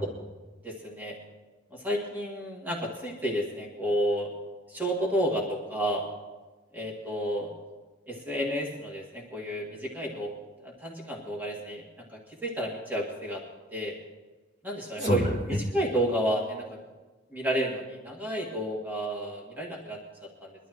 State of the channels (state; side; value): normal; both; correlation 0.51